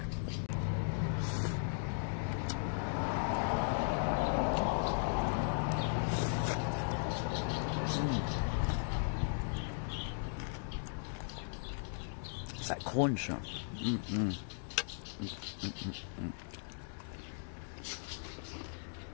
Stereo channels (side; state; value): right; silent; digital silence